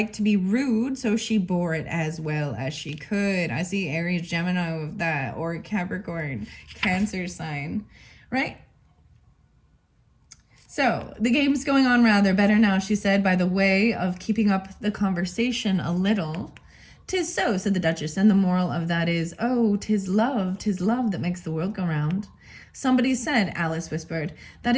to be rude, so she bore it as well as she could. I see Aries, Gemini with that, or Capricorn, Cancer sign, right? So, the game's going on rather better now, she said, by the way of keeping up the conversation a little. 'Tis so, said the Duchess, and the moral of that is, oh, 'tis love that makes the world go round. Somebody said, Alice whispered, that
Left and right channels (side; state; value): both; identical; correlation 1.00